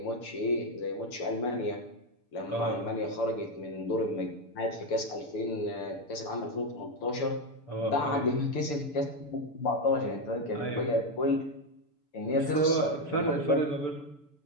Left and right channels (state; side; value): late; right; 6.8 ms